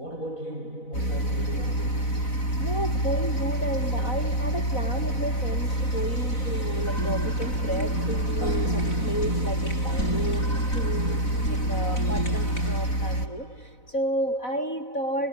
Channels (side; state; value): right; late; 4.0 ms